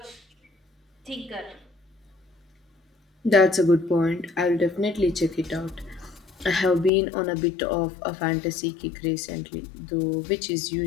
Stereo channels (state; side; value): drops out; right; at 6.9 s